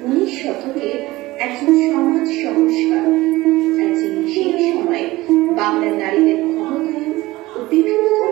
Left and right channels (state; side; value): quieter; left; 18.9 dB